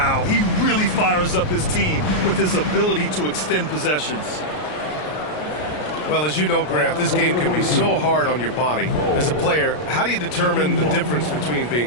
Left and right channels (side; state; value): right; late; 33 ms